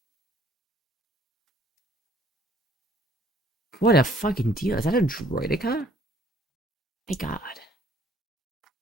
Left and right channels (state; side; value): normal; both; correlation 0.60